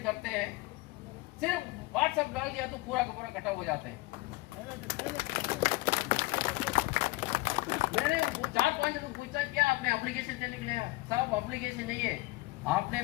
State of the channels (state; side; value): quieter; right; 21.8 dB